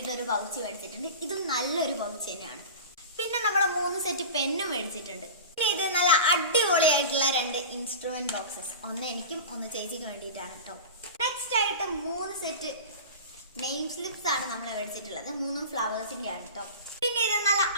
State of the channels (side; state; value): both; inverted; correlation -0.32